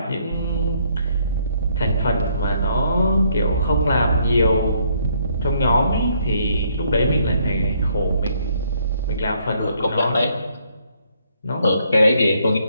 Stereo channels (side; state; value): both; inverted; correlation -0.69